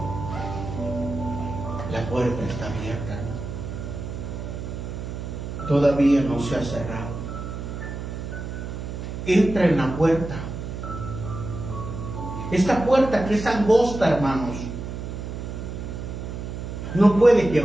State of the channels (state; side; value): noise; right; hum, 7 dB below the sound